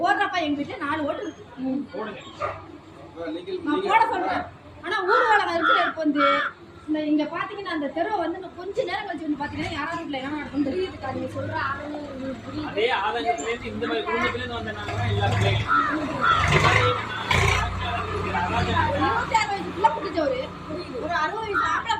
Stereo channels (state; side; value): identical; both; correlation 1.00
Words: போடுறப்ப எங்க வீட்டுல 4 ஓட்டு இருக்கு. நான் போட சொல்றேன். ஆனா ஊர்வலம் இருக்கிற வந்து இங்க பாத்தீங்கன்னா அந்த தெருவை வந்து கொஞ்ச நேரம் கழிச்சு வந்து பாத்தீங்கன்னா யாராவது வீட்டுல என்ன நடக்கும் தெரியுதுக்கா. நீங்க சொல்ற அதே ஆதங்கத்துல இருந்து இந்த மாதிரி குடும்பத்துல இருந்து வந்தனால எல்லா குட்டிச்சவரு, ஒரு 60 வயசு ஆம்பளை